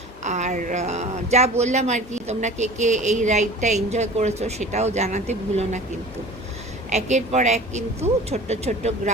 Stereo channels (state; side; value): normal; both; correlation 0.40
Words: আর যা বললাম আর কি, তোমরা কে কে এই রাইডটা এনজয় করেছো সেটাও জানাতে ভুলো না। কিন্তু একের পর এক কিন্তু ছোট্ট ছোট্ট